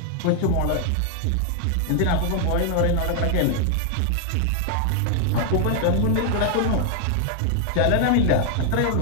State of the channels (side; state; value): both; different; correlation 0.00